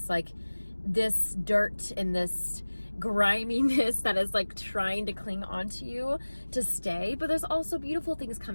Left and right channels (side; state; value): both; inverted; correlation -1.00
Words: like, this dirt and this griminess that is like trying to cling onto you to stay, but there's also beautiful things